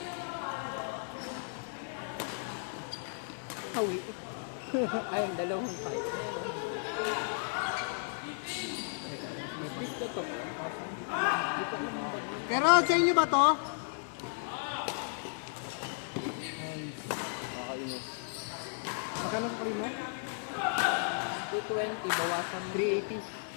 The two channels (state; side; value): silent; right; digital silence